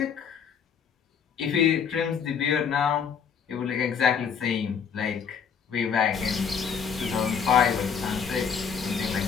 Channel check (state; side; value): quieter; right; 6.9 dB